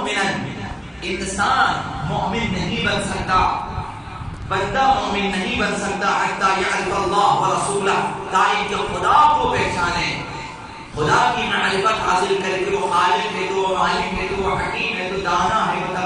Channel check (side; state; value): both; identical; correlation 1.00